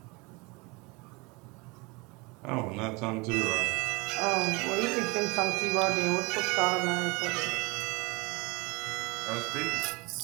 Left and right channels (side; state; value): left; quieter; 26.2 dB